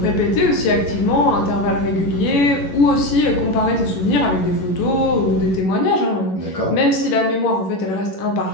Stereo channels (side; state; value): right; late; 11 ms